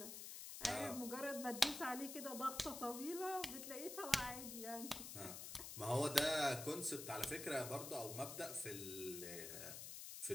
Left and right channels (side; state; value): left; noise; hiss, 7 dB below the sound